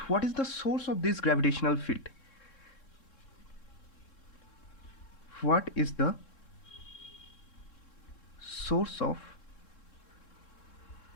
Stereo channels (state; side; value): late; right; 3.7 ms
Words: what is the source of this gravitational field? What is the source of